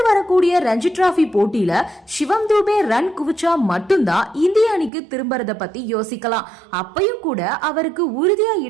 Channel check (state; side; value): drops out; left; at 4.9 s